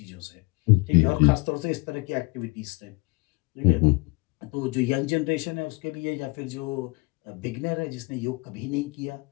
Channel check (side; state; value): right; quieter; 27.1 dB